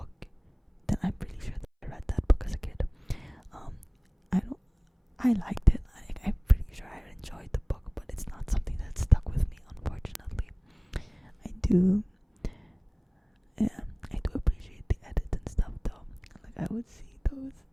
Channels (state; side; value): identical; both; correlation 1.00